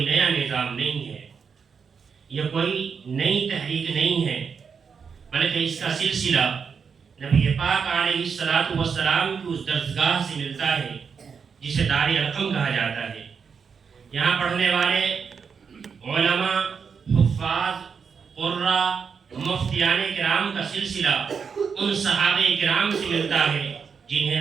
نیا نظام نہیں ہے، یہ کوئی نئی تحریک نہیں ہے، بلکہ اس کا سلسلہ نبی پاک علیہ السلام کی اس درسگاہ سے ملتا ہے جسے دار ارقم کہا جاتا ہے۔ یہاں پڑھنے والے علماء، حفاظ، قراء، مفتیان کرام کا سلسلہ ان صحابہ کرام سے ملتا ہے جنہیں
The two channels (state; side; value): quieter; left; 6.2 dB